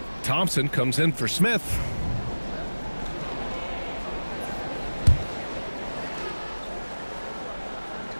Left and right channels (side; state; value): both; inverted; correlation -1.00